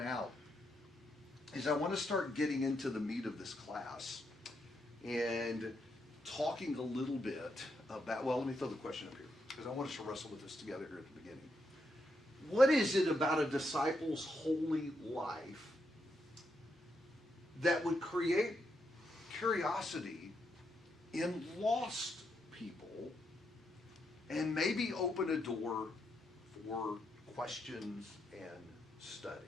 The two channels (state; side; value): normal; both; correlation 0.81